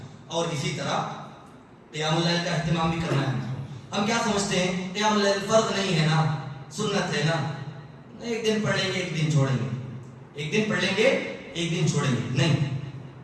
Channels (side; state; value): both; identical; correlation 1.00